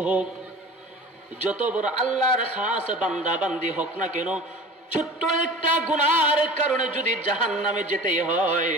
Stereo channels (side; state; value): both; normal; correlation 0.39